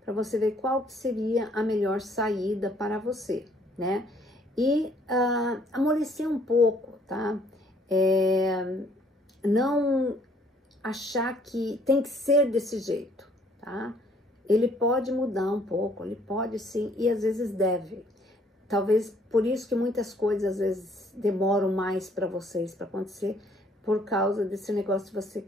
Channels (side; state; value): both; normal; correlation 0.63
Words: para você ver qual que seria a melhor saída para você, né? E amolecer um pouco, tá? Não achar que tem que ser desse jeito, tá? Ele pode mudar um pouco, ele pode sim, e às vezes deve. Talvez por isso que muitas coisas às vezes demoram mais para vocês para acontecer, por causa desse negócio de você